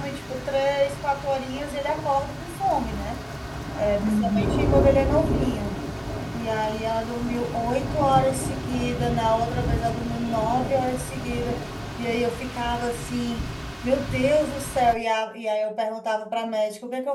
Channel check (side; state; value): both; identical; correlation 1.00